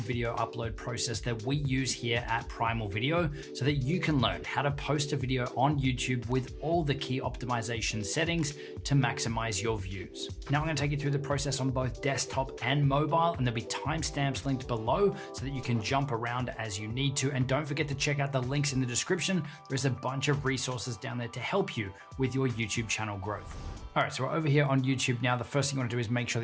video upload process that we use here at Primal Video so that you can learn how to post a video on YouTube with all the key optimization settings to maximize your views. Now I'm going to take you through the process on both desktop and mobile, and there'll be timestamps linked below so that you can jump around as you need to. And don't forget to check out the links in the description. There's a bunch of resources down there to help you with your YouTube channel growth. All right, so we're over here on YouTube now. The first thing you want to do is make sure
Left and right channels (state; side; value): identical; both; correlation 1.00